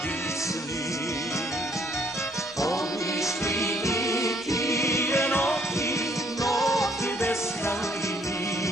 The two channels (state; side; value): normal; both; correlation 0.65